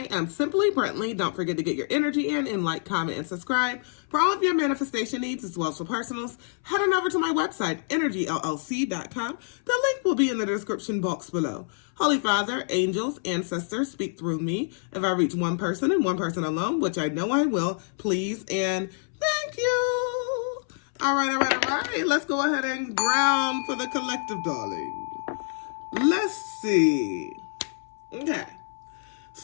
am Simply Brentley. Don't forget to get your energy in and like, comment, and subscribe. For all of your manifestation needs as well as for personals, head on over to my website, energyllc.com. The link will be in the description box below. Holy Father, angels, ancestors, speak through me. If I reach one person and one person alone, which I know I will, please and thank you. All right. Let's go ahead and ground for the collective, darling. Let's see. Okay.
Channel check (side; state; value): right; silent; 60 dB below the other